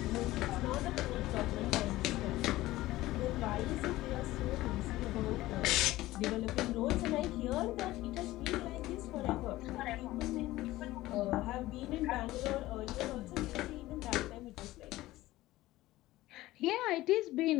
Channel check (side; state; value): right; quieter; 17.1 dB